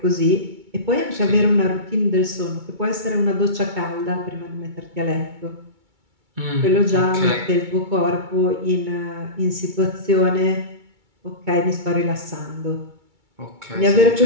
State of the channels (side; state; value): left; late; 2.2 ms